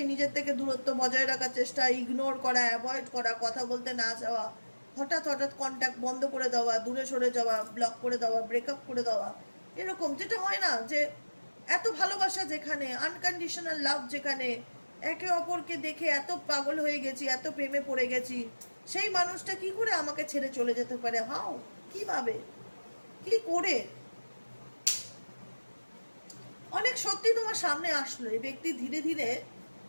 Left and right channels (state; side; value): inverted; both; correlation -1.00